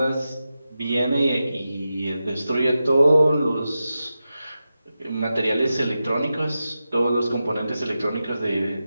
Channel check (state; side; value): inverted; both; correlation -0.91